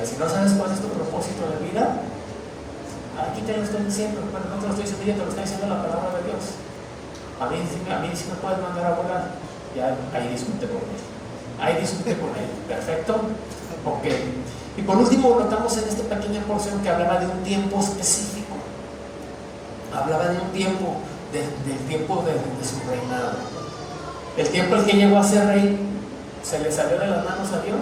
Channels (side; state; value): both; identical; correlation 1.00